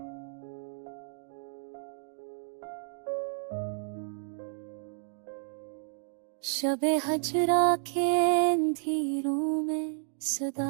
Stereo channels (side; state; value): left; silent; digital silence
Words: शबे हजरा के अंधेरों में